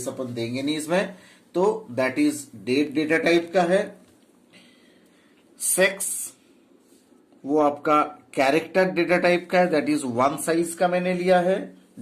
अपन देंगे नहीं इसमें, तो that is date data type का है। सेक्स वो आपका कैरेक्टर डेटा टाइप का है, दैट इज 1 साइज का मैंने लिया है।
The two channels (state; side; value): identical; both; correlation 1.00